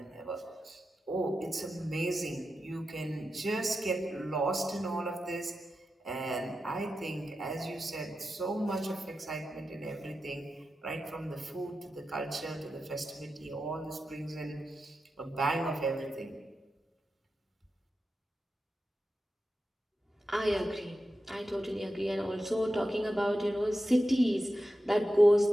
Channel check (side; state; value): both; normal; correlation 0.91